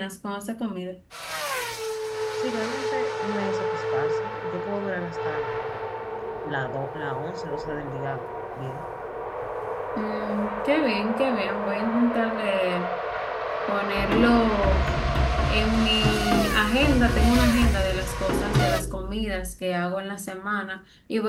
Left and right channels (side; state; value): both; identical; correlation 1.00